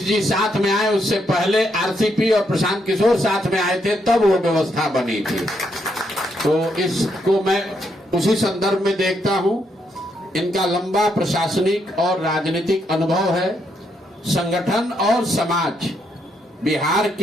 जी साथ में आए। उससे पहले आरसीपी और प्रशांत किशोर साथ में आए थे, तब वो व्यवस्था बनी थी। तो इसको मैं उसी संदर्भ में देखता हूं, इनका लंबा प्रशासनिक और राजनीतिक अनुभव है। संगठन और समाज, बिहार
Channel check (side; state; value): both; normal; correlation 0.77